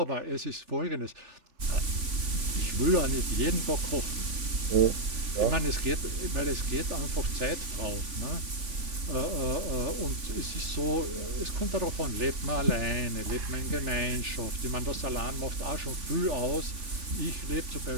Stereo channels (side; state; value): left; late; 3.5 ms